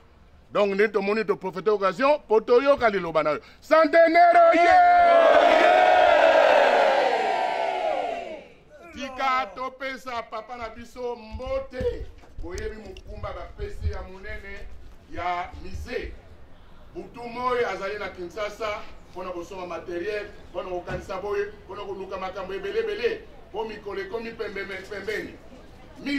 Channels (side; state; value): both; identical; correlation 1.00